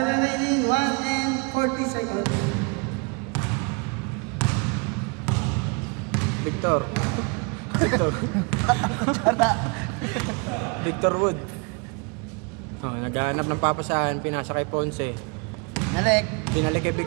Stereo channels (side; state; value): left; quieter; 32.9 dB